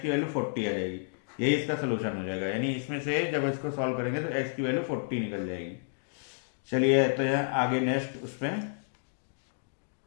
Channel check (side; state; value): right; silent; digital silence